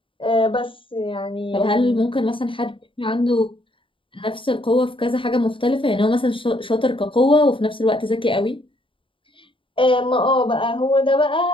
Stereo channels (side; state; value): right; late; 0.25 ms